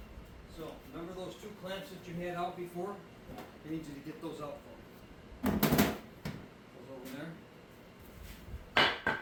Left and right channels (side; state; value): both; identical; correlation 1.00